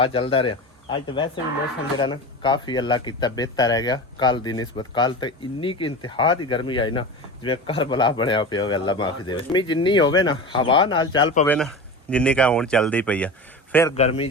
चलता रहा। अज तो वैसे भी मौसम जरा ना काफ़ी अल्लाह किया बेहतर रह गया। कल की निस्बत कल तो इन्नी की इंतहा की गर्मी आई ना जिवें करबला बनया पिया होवे। अल्लाह माफी दे। गर्मी जिन्नी होवे ना हवा नाल चल पवे ना जिन्नी का हुण चलदी पई है, फिर गर्मी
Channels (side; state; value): both; normal; correlation 0.29